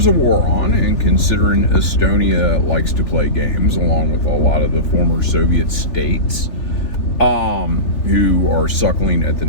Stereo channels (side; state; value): right; late; 3.4 ms